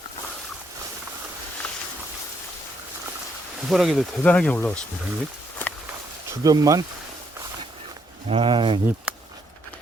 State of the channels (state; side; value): normal; both; correlation 0.73